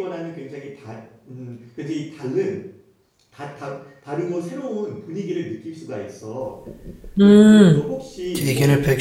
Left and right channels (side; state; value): both; identical; correlation 1.00